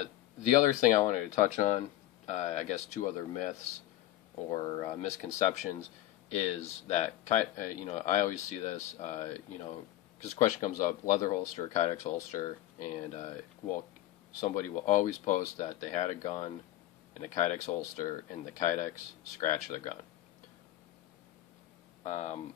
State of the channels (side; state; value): right; quieter; 14.7 dB